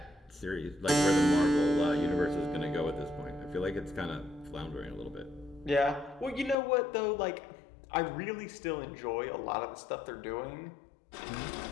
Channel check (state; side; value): drops out; right; at 6.6 s